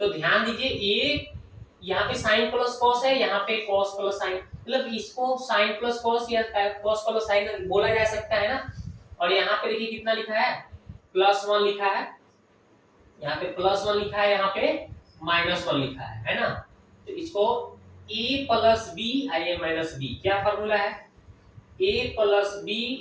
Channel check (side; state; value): both; identical; correlation 1.00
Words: ध्यान दीजिए, a यहाँ पे साइन प्लस कॉस है, यहाँ पे कॉस प्लस साइन, मतलब इसको साइन प्लस कॉस या कॉस प्लस साइन बोला जा सकता है ना। और यहाँ पे देखिए कितना लिखा है, +1 लिखा है, यहाँ पे +1 लिखा है, यहाँ पे -1 लिखा है ना। तो इसको a plus b a minus b, क्या फॉर्मूला है, a plus b